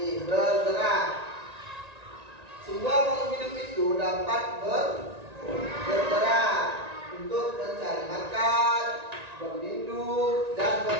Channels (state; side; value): late; left; 1.9 ms